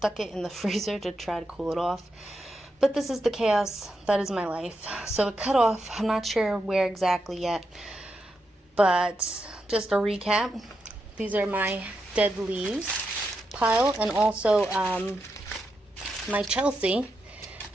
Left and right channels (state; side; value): normal; both; correlation 0.85